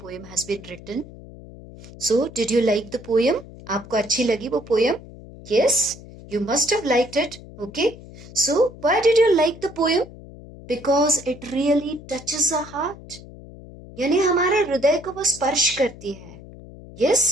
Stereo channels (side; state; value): left; noise; hum, 17 dB below the sound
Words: has been written. So, did you like the poem? आपको अच्छी लगी वो poem? Yes, you must have liked it. Okay. So, why did you like the poem? Because it really touches our heart. यानी हमारे हृदय को वो स्पर्श करती है.